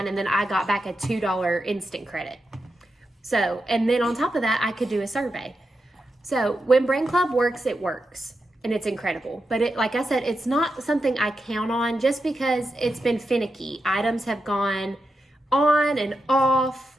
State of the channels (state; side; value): normal; both; correlation 0.88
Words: and then I got back a $2 instant credit. So, and then on top of that, I could do a survey. So when Brandclub works, it works, and it's incredible. But it, like I said, it's not something I count on just because it's been finicky. Items have gone on and